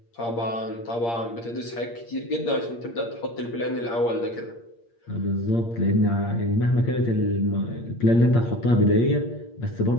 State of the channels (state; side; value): late; right; 8.6 ms